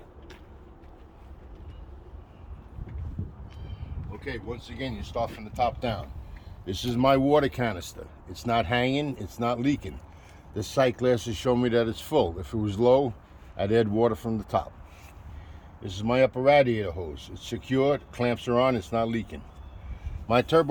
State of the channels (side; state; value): both; identical; correlation 1.00